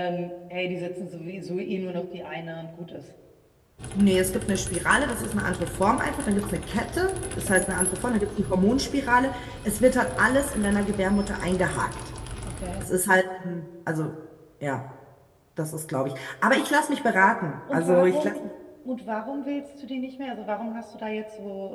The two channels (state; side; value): identical; both; correlation 1.00